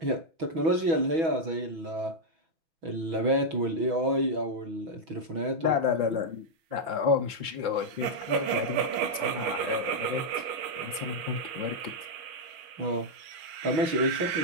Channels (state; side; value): late; left; 6.5 ms